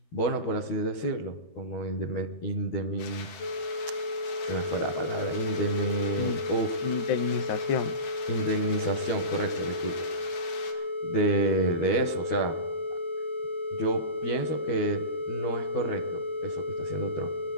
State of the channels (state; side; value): late; right; 12 ms